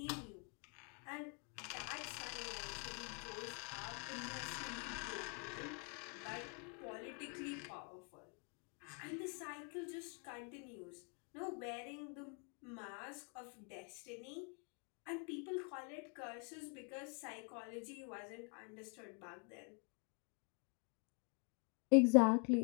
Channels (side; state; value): right; quieter; 37.2 dB